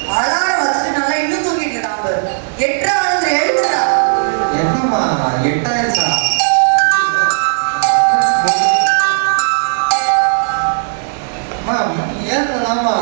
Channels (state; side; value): silent; left; 70 dB below the other